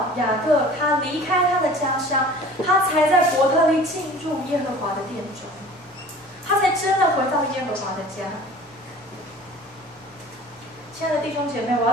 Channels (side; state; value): both; normal; correlation 0.45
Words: 雅各他离开他的家乡，他才在伯特利进入耶和华的殿中，他才真的回到耶和华的家。亲爱的弟兄姐妹，我